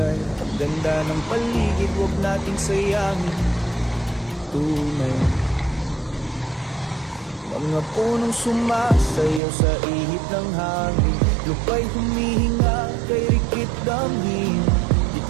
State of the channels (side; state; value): left; drops out; at 9.4 s